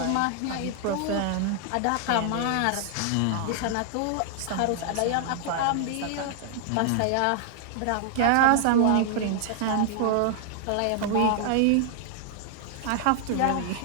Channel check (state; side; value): different; both; correlation 0.00